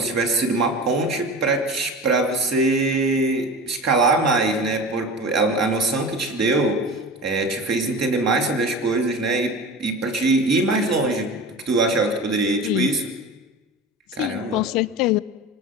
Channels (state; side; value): normal; both; correlation 0.32